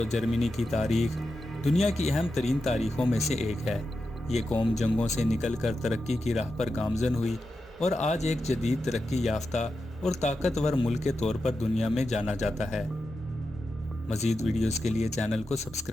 جرمنی کی تاریخ دنیا کی اہم ترین تاریخوں میں سے ایک ہے۔ یہ قوم جنگوں سے نکل کر ترقی کی راہ پر گامزن ہوئی اور آج ایک جدید ترقی یافتہ اور طاقتور ملک کے طور پر دنیا میں جانا جاتا ہے۔ مزید ویڈیوز کے لیے چینل کو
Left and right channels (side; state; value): both; normal; correlation 0.89